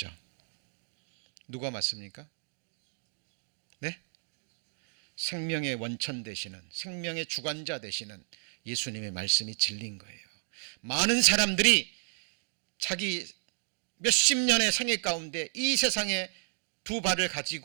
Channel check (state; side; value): silent; left; 56 dB below the other